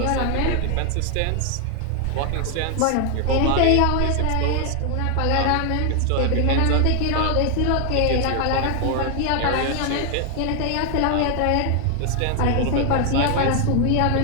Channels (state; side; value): different; both; correlation 0.00